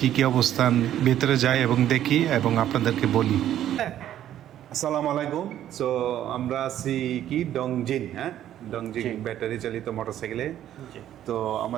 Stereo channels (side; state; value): left; quieter; 11.6 dB